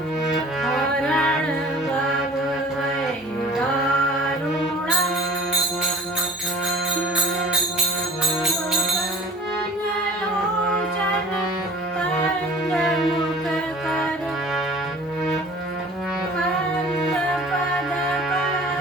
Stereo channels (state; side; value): normal; both; correlation 0.46